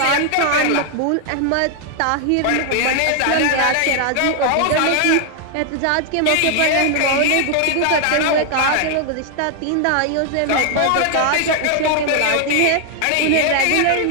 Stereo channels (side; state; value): both; different; correlation 0.00